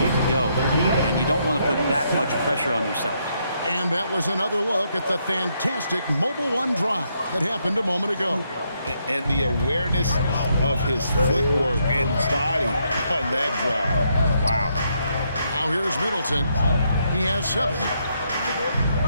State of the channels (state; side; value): inverted; both; correlation -0.76